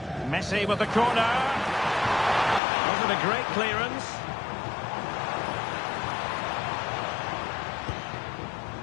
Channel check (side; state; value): right; drops out; at 2.6 s